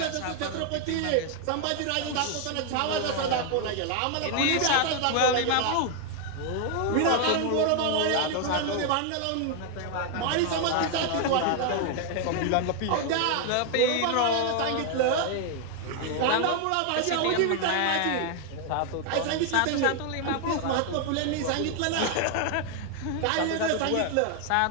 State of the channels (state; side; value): different; both; correlation 0.00